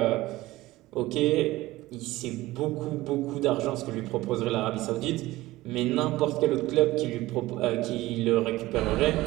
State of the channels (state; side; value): quieter; left; 18.0 dB